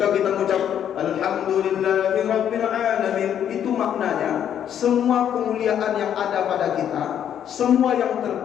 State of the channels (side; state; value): right; quieter; 9.5 dB